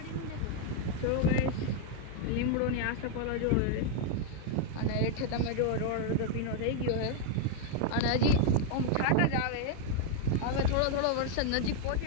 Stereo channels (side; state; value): both; different; correlation 0.00